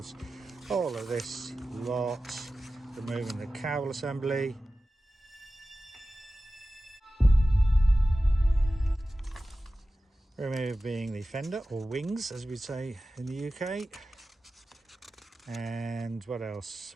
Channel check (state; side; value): normal; both; correlation 0.95